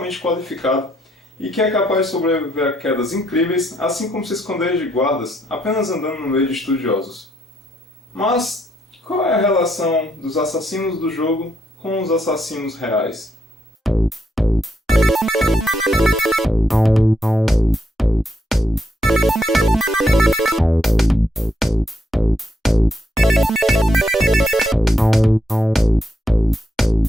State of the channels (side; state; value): both; normal; correlation 0.77